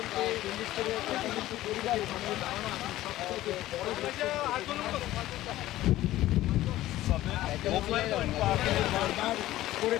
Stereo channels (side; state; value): right; quieter; 15.2 dB